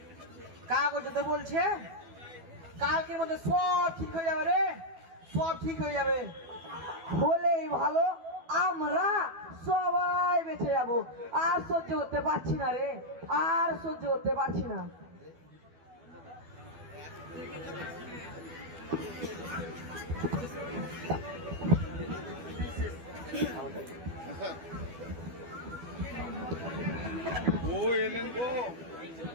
কাগজে বলছে কালকের মধ্যে সব ঠিক হয়ে যাবে রে, সব ঠিক হয়ে যাবে। হলেই ভালো, আমরা সবাই বেঁচে যাব। আর সহ্য করতে পারছি না রে, আর সহ্য করতে পারছি না। ও এলেন গো,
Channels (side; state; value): left; late; 12 ms